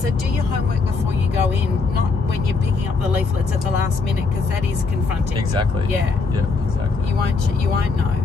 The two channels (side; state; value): right; quieter; 4.3 dB